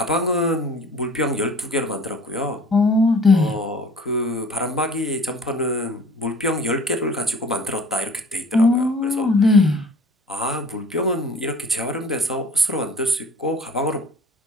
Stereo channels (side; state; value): both; normal; correlation 0.47